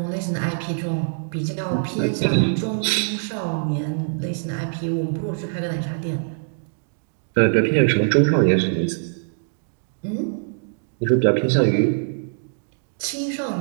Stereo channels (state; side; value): silent; left; digital silence